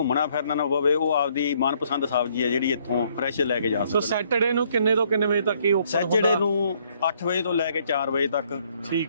ਫਿਰਨਾ ਨਾ ਪਵੇ, ਉਹ ਆਪਦੀ ਮਨਪਸੰਦ ਸਬਜ਼ੀ ਹੈ ਜਿਹੜੀ ਇੱਥੋਂ ਫਰੈਸ਼ ਲੈ ਕੇ ਜਾ ਸੋ ਸੈਟਰਡੇ ਨੂੰ ਕਿੰਨੇ ਤੋਂ ਕਿੰਨੇ ਵਜੇ ਤੱਕ ਹੀ ਓਪਨ ਸੈਚਰਡੇ ਨੂੰ 8 ਵਜੇ ਤੋਂ ਲੈ ਕੇ 4 ਵਜੇ ਤੱਕ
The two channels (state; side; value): inverted; both; correlation -0.67